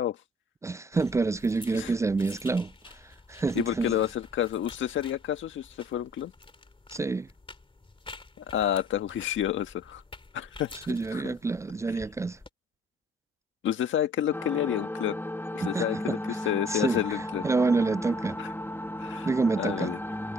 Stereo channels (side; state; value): both; normal; correlation 0.54